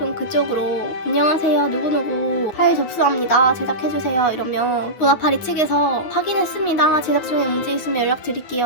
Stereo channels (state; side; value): late; right; 9.7 ms